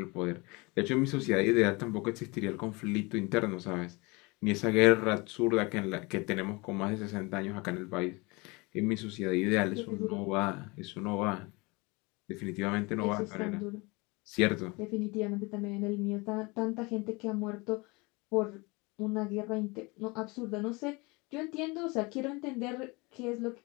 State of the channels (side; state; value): right; quieter; 26.1 dB